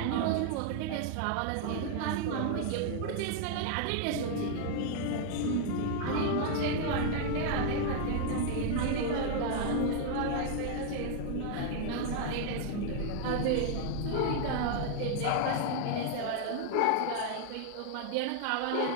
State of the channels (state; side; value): different; both; correlation 0.00